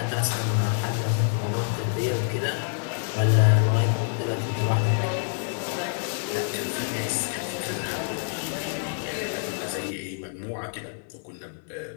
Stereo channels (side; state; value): right; silent; digital silence